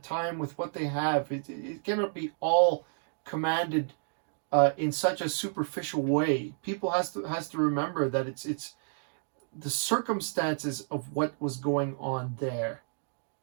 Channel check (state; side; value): silent; left; digital silence